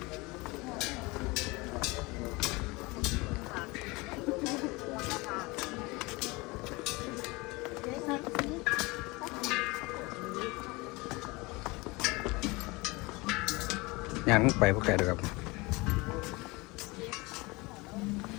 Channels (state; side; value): quieter; right; 24.2 dB